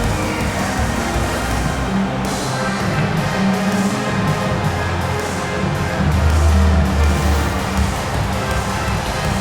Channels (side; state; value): both; identical; correlation 1.00